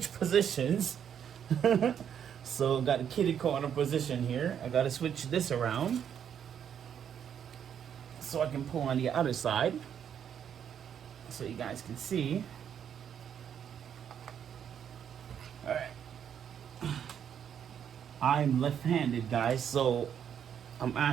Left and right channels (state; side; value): quieter; left; 8.6 dB